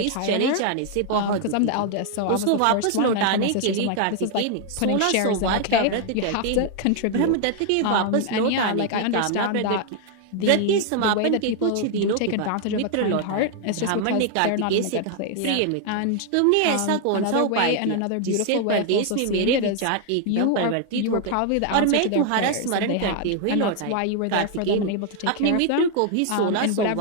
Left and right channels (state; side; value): different; both; correlation 0.00